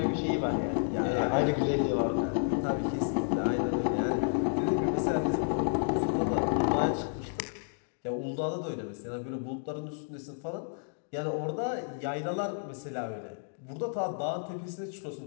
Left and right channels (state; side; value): silent; right; digital silence